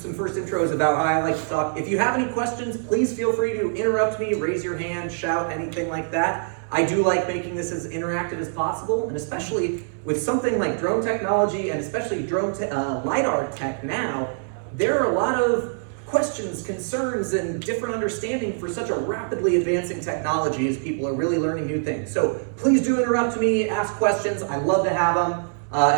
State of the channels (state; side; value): silent; left; digital silence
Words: first intros about how I like to talk. If you have any questions, please feel free to interrupt me, raise your hand, shout, anything like that. I do like making this as interactive as possible, and especially with something like drone technology, and especially drone LiDAR tech now, there are a lot of questions, concerns, and different understanding for such a rapidly advancing technology as people are really learning new things. So please do interrupt me, ask questions. I love to have them.